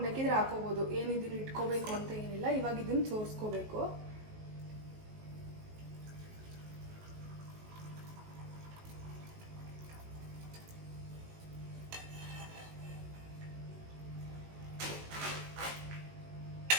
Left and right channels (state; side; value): late; left; 19 ms